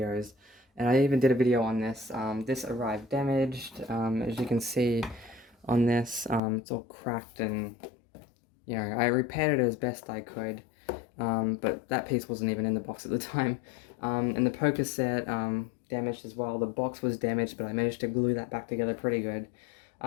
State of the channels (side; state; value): right; drops out; at 6.4 s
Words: and I even did a video on this. This arrived damaged, as you can see on this. It's all cracked, and I repaired it as best I could, but that piece wasn't even in the box at the time. And the poker set damaged as well. The box was damaged, but I managed to glue that back together pretty good.